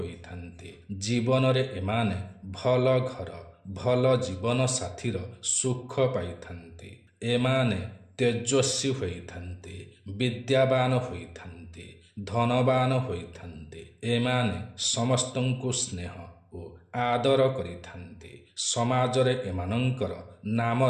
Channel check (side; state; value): both; identical; correlation 1.00